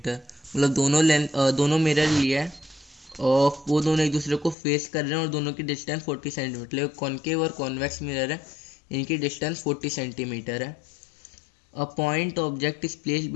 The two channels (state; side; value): drops out; right; at 4.5 s